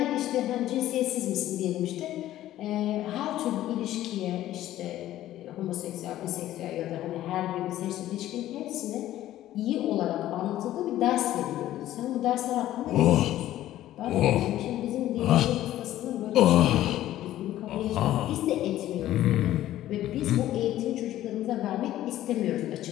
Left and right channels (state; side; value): quieter; right; 13.7 dB